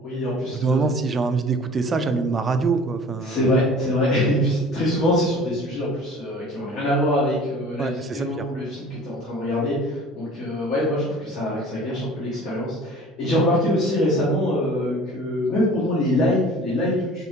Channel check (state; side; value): normal; both; correlation 0.46